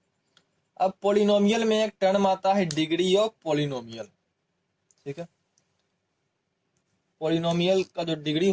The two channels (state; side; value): identical; both; correlation 1.00